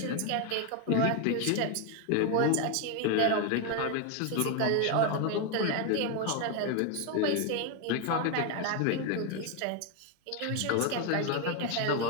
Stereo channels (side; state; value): both; different; correlation 0.01